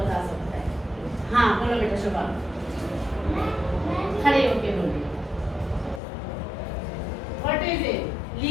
सकता है? हाँ बोलो बेटा शुभम, खड़े होके बोलिए। What is it?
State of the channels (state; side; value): drops out; right; at 6.0 s